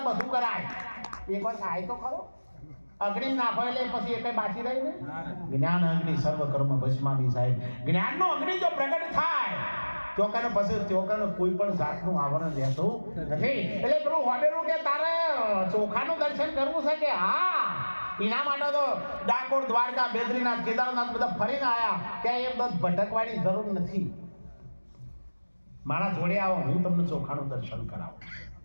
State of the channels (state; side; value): inverted; both; correlation -1.00